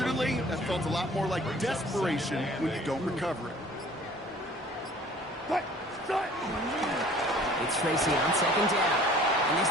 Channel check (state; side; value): normal; both; correlation 0.50